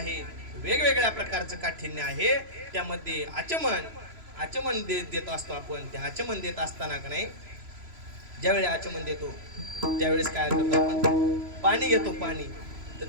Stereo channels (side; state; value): left; late; 3.0 ms